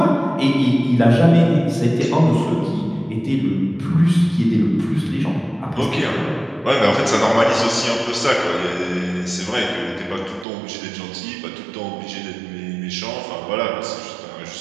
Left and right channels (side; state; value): left; drops out; at 10.5 s